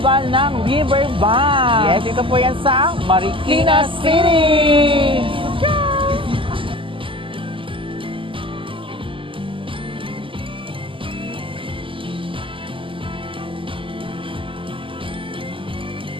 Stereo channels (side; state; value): left; late; 0.25 ms